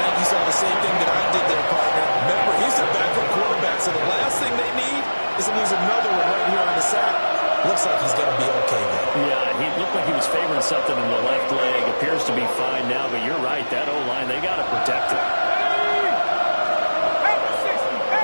think you saw the same thing that I did there, partner. Remember, he's a backup quarterback, so the last thing they need is to lose another one right here on the sack. Looks like he's going to be okay, though. Yeah, he looked like he was favoring something in the left leg. Appears to be fine now, but you're right. That O-line, they got to protect it.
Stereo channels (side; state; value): both; inverted; correlation -1.00